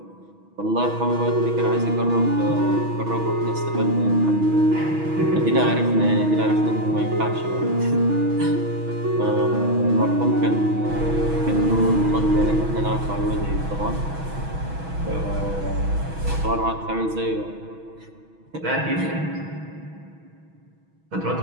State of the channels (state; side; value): late; left; 6.2 ms